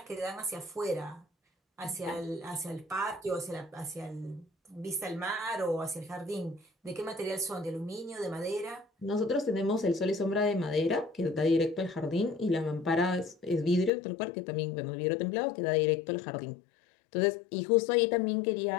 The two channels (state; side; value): drops out; right; at 13.9 s